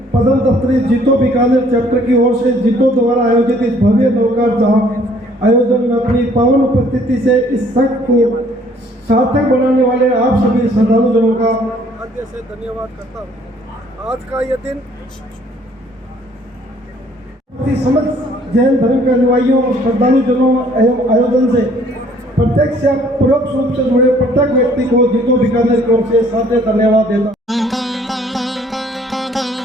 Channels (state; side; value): normal; both; correlation 0.60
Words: पदम दफ्तरी जीतो बीकानेर चैप्टर की ओर से जीतो द्वारा आयोजित इस भव्य नवकार जाप आयोजन में अपनी पावन उपस्थिति से इस संघ को सार्थक बनाने वाले आप सभी श्रद्धालुजनों का हृदय से धन्यवाद करता हूँ। आज का यह दिन समस्त जैन धर्म के अनुयायियों और श्रद्धालुजनों एवं आयोजन से प्रत्यक्ष या परोक्ष रूप से जुड़े प्रत्येक व्यक्ति को जीतो बीकानेर की ओर से सादर धन्यवाद देता।